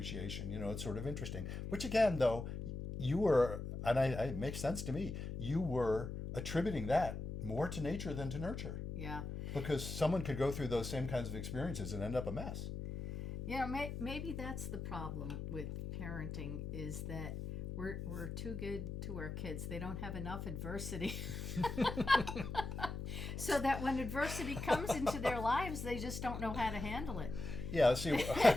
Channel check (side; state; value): left; noise; hum, 5 dB below the sound